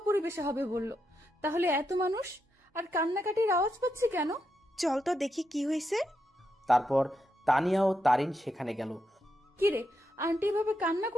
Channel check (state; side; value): normal; both; correlation 0.83